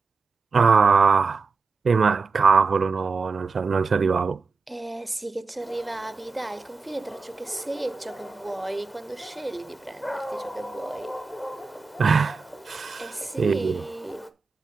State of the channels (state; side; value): quieter; left; 4.5 dB